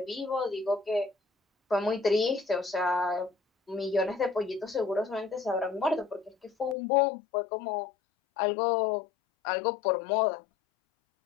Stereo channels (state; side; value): drops out; right; at 6.8 s